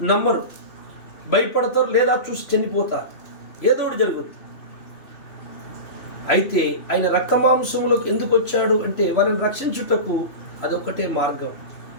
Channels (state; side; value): late; right; 3.1 ms